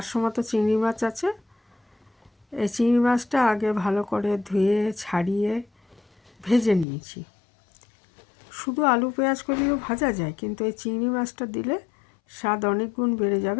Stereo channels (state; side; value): drops out; right; at 6.9 s